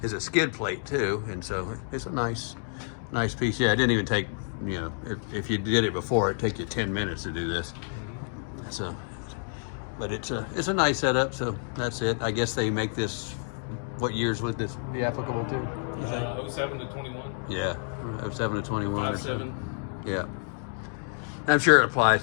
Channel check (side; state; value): right; silent; 59 dB below the other